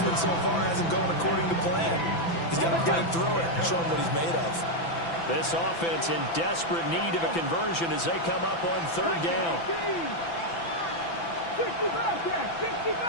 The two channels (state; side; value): late; right; 6.0 ms